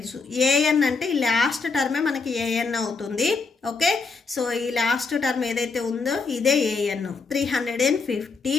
AN అంటే ఈ లాస్ట్ టర్మే మనకి AN అవుతుంది. ఓకే, సో ఈ లాస్ట్ టర్మ్ ఏదైతే ఉందో ఇదే AN 350.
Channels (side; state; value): right; quieter; 4.4 dB